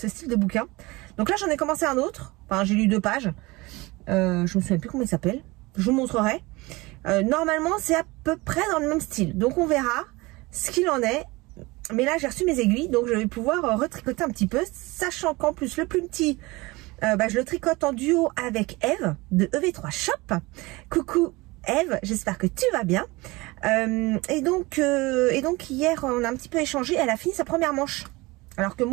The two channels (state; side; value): quieter; left; 22.7 dB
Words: style de bouquin. Donc là, j'en ai commencé un autre. Enfin, j'ai lu 2 pages. Je me souviens plus comment il s'appelle. Je vous montrerai. Normalement, c'est à peu près dans le même style. Donc on verra ce qu'il en est. Mais là, j'ai reçu mes aiguilles. Donc je vais pouvoir retricoter un petit peu. Sachant qu'en plus, le plus petit... je le tricote en duo avec Eve de EV3 Shop. Coucou Eve, j'espère que tu vas bien. Et donc hier on a un petit peu échangé. Elle a fini sa première manche, alors que